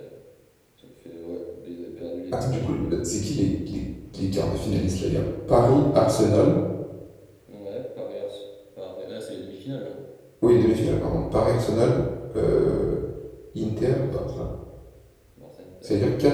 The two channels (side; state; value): both; identical; correlation 1.00